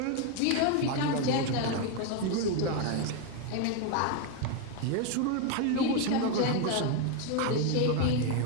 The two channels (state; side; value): different; both; correlation 0.01